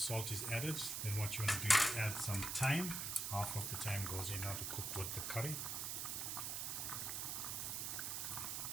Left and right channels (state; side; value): noise; right; hiss, 2 dB below the sound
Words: is added, then what you want to do is add some thyme. Half of the thyme goes in now to cook with the curry.